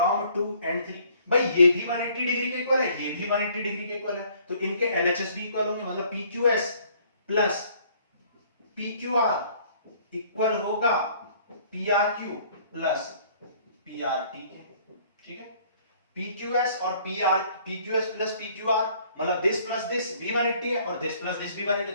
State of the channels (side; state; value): both; inverted; correlation -0.59